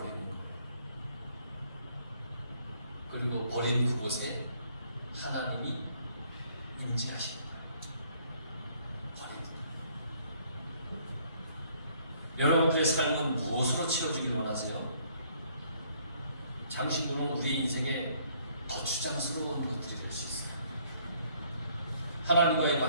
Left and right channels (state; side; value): inverted; both; correlation -0.64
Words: 거예요. 그리고 버린 그곳에 하나님이 임재하십니다. 버리는 거예요. 여러분들의 삶은 무엇으로 채워지길 원하세요? 장신구는 우리의 인생에 거추장스러운 것들이 될 수 있어요. 하나님과의